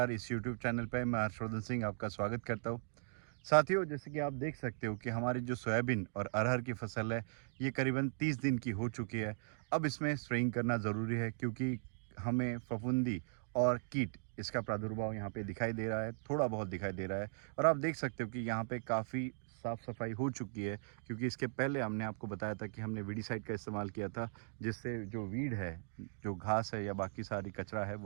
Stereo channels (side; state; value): left; silent; digital silence